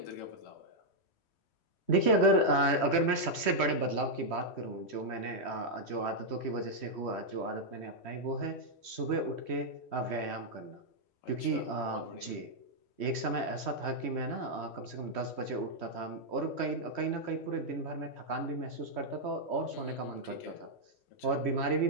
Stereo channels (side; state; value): right; late; 3.1 ms